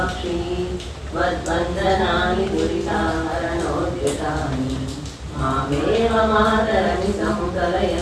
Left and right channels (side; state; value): both; identical; correlation 1.00